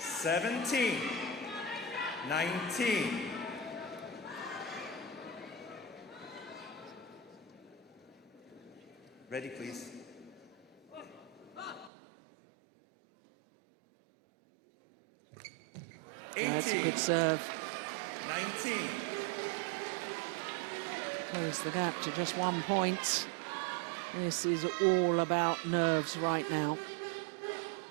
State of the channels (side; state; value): left; drops out; at 11.9 s